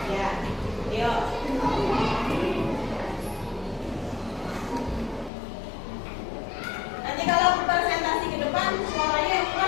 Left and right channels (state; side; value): drops out; right; at 5.3 s